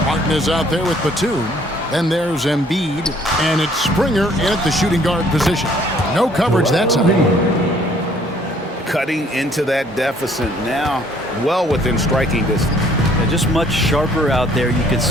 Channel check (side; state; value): both; normal; correlation 0.61